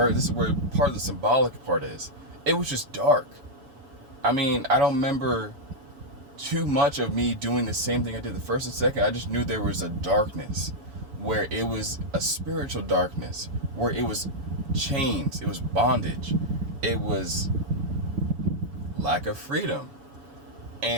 part of the symbolic part is. It was just dark. I mean, I don't remember too much of me doing the same thing I did the first and second. I just knew there was a darkness, where it was a spiritual darkness, where it was chains, it was bondage, it was lack of freedom.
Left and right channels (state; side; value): late; left; 7.1 ms